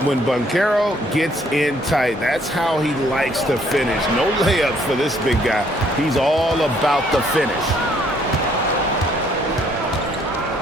When Banchero gets in tight, that's how he likes to finish. No layups for this big guy. He's all about the finish.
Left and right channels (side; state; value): both; normal; correlation 0.65